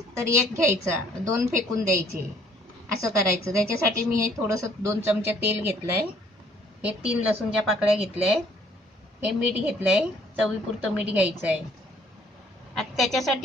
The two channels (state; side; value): normal; both; correlation 0.60